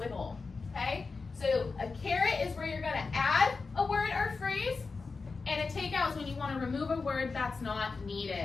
okay? So a carrot is where you're going to add a word or phrase, and a take out is when you want to remove a word that's not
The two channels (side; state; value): right; quieter; 4.3 dB